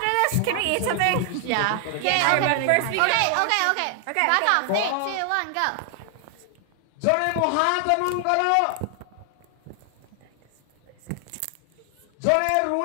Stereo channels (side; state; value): both; different; correlation 0.00